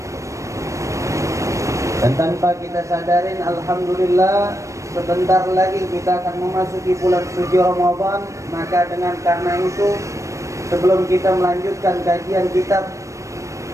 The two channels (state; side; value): late; left; 0.15 ms